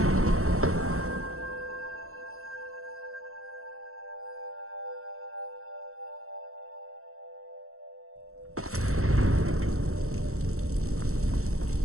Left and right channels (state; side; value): late; left; 0.63 ms